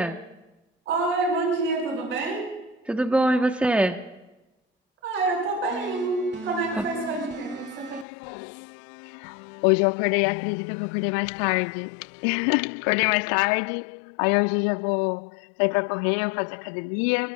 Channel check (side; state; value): right; drops out; at 8.1 s